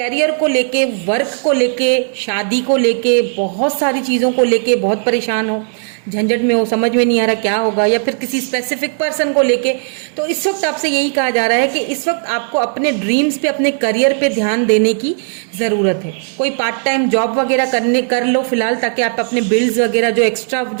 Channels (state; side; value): silent; left; 61 dB below the other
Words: को लेके, work को लेके, शादी को लेके, बहुत सारी चीज़ों को लेके बहुत परेशान हो, झंझट में हो, समझ में नहीं आ रहा क्या होगा, या फिर किसी स्पेसिफिक पर्सन को लेके, तो इस वक्त आपसे यही कहा जा रहा है कि इस वक्त आपको अपने ड्रीम्स पे, अपने करियर पे ध्यान देने की ज़रूरत है। कोई पार्ट टाइम जॉब वगैरह कर लो फिलहाल, ताकि आप अपने बिल्स वगैरह, जो एक्स्ट्रा